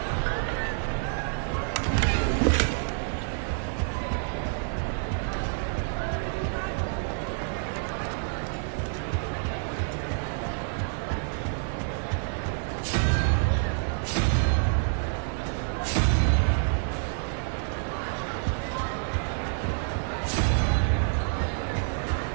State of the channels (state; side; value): silent; left; 59 dB below the other